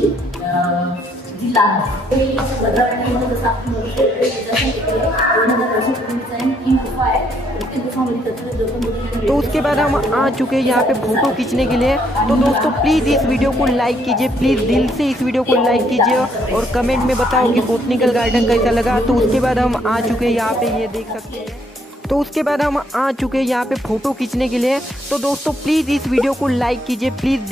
जिल्हा आहे. भद्रावती जसं आपण बघू शकतो 2000 वर्षापूर्वीचा ही गुफा आहे. प्रत्येक गुफामध्ये तो उसके बाद हम आ चुके हैं यहाँ पे फोटो खींचने के लिए। तो दोस्तों प्लीज़ इस वीडियो को लाइक कीजिए, प्लीज़ दिल से इस वीडियो को लाइक कीजिए और कमेंट में बताओ कि बोटनिकल गार्डन कैसा लगा। तो उसके बाद हम आ चुके हैं यहाँ पे, ये देख सकते हैं। तो उसके बाद हम आ चुके हैं यहाँ पे फ़ोटो खींचने के लिए। तो दोस्तों प्लीज़ इस वीडियो को लाइक कीजिए, प्लीज़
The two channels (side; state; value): both; normal; correlation 0.70